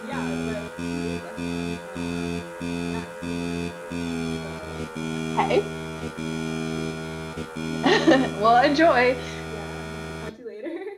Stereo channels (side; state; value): both; identical; correlation 1.00